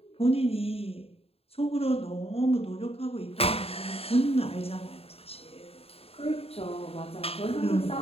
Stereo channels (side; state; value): right; late; 0.29 ms